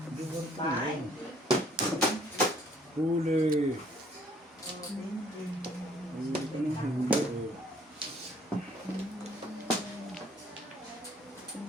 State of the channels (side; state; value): both; normal; correlation 0.61